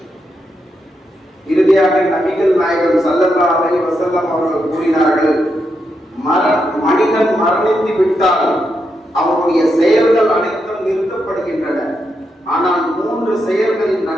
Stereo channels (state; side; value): normal; both; correlation 0.83